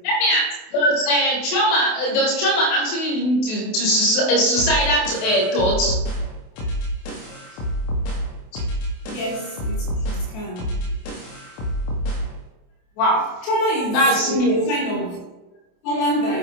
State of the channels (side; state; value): right; late; 28 ms